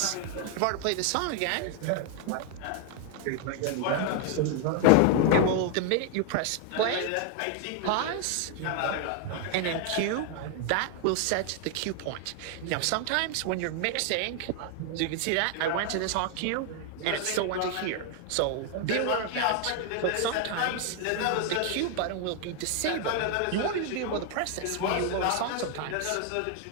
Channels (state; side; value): different; both; correlation 0.00